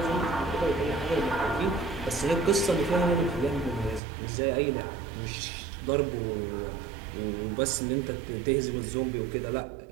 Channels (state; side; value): drops out; left; at 4.0 s